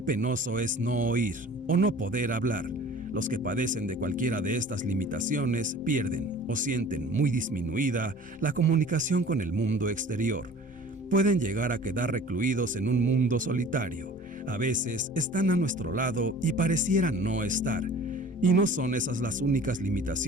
penoso es no oír o no poder hablar. Los que padecen de cualquiera de estas limitaciones pierden o sienten muy disminuida la comunicación con el mundo exterior. Pueden llegar a quedar recluidos en un mundo solitario. A veces están a nuestro lado y parecieran no estar. Y no son esas las únicas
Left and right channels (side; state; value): both; normal; correlation 0.45